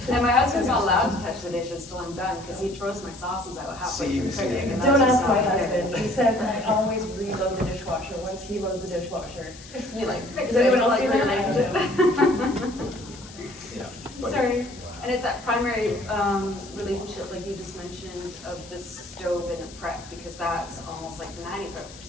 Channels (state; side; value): noise; left; hiss, 18 dB below the sound